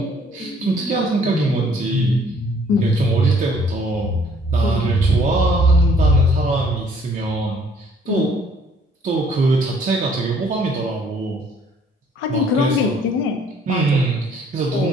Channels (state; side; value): normal; both; correlation 0.60